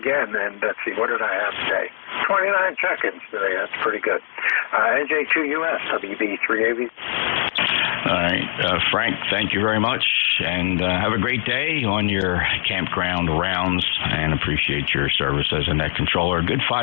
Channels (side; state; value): right; silent; digital silence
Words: And let's see, what did I have today? 29 check-ins today. That's pretty good. NJ2US, WB3AV. All right, Frank, thank you very much, and have a great day on your campground rounds, and appreciate your service as a net controller. A good